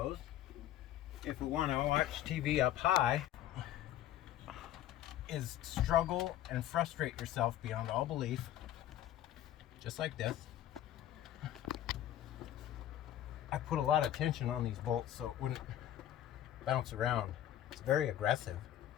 if we want to watch TV up high, is struggle and frustrate yourself beyond all belief, just like this. I put a lot of tension on these bolts so it wouldn't bounce around. It's very aggressive.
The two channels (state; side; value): quieter; right; 12.1 dB